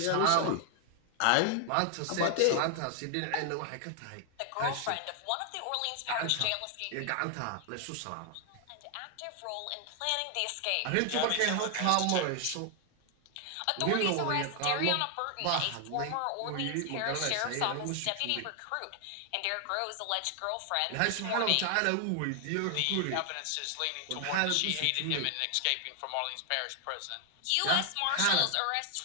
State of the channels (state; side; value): different; both; correlation 0.00